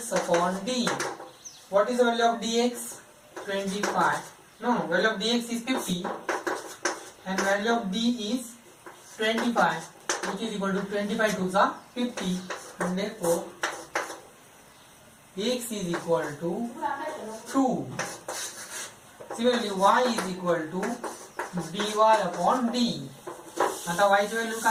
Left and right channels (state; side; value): identical; both; correlation 1.00